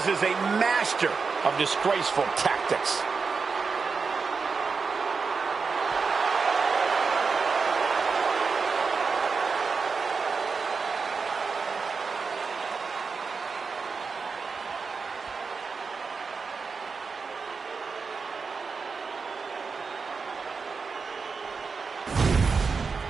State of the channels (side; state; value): left; quieter; 5.0 dB